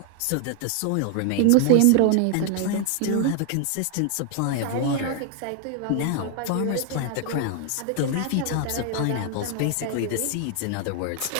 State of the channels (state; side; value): different; both; correlation 0.00